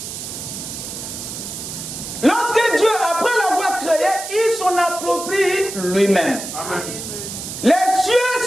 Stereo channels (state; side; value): noise; right; hiss, 8 dB below the sound